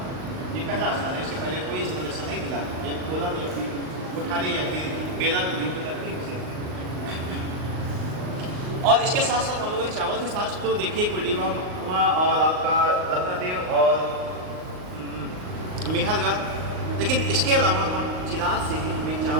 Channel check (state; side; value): late; left; 39 ms